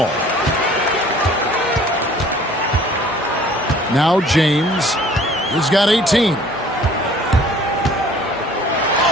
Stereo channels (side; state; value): both; normal; correlation 0.52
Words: Now James. He's got 18.